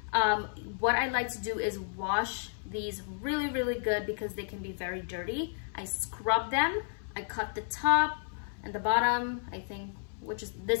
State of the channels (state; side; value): silent; right; 56 dB below the other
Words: What I like to do is wash these really good because they can be very dirty. I scrub them. I cut the top and the bottom. I think,